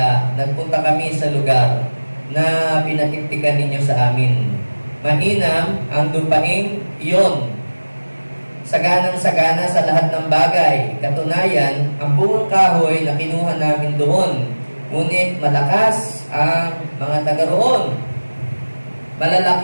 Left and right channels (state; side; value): inverted; both; correlation -1.00